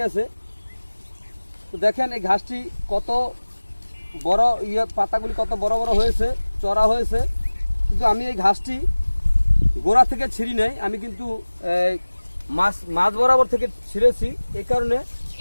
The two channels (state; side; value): inverted; both; correlation -1.00